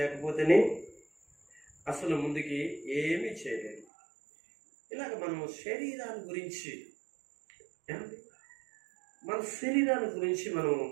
అసలు ముందుకి ఏమీ చేయలేదు. ఇలాగ మనం శరీరాన్ని గురించి మన శరీరాన్ని గురించి మనం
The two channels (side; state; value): left; drops out; at 3.9 s